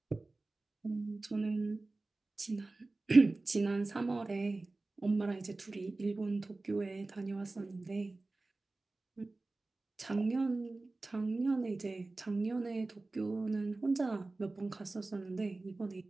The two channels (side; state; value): left; quieter; 3.2 dB